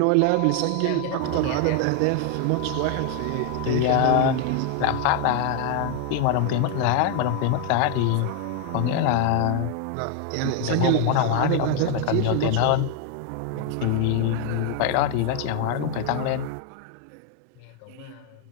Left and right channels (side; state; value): both; different; correlation 0.00